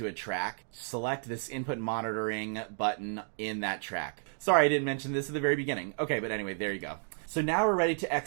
a track, select this input monitoring button in that track. Sorry, I didn't mention this at the very beginning. Okay, but anyway, there you go. So now we're ready to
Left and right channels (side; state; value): left; silent; 57 dB below the other